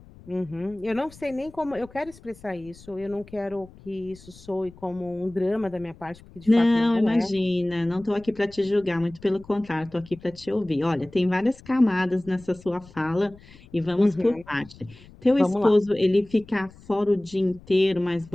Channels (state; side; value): noise; left; rumble, 22 dB below the sound